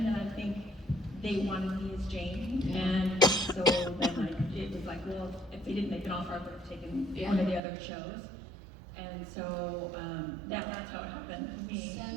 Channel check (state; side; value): drops out; left; at 7.6 s